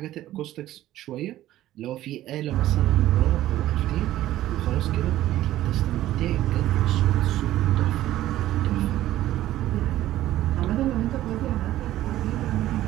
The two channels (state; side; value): quieter; left; 14.2 dB